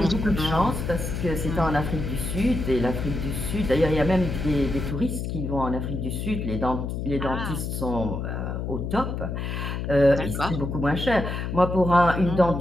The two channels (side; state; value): left; noise; hum, 3 dB below the sound